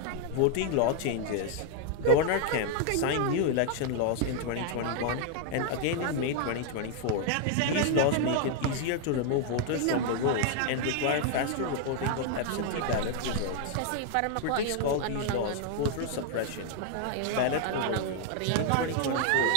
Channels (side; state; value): both; different; correlation 0.00